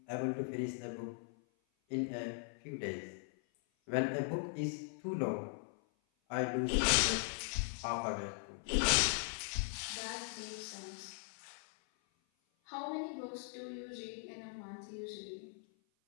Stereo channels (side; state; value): right; silent; 51 dB below the other